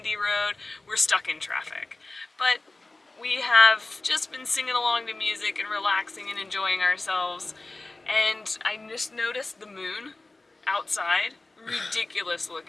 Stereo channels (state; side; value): quieter; right; 3.1 dB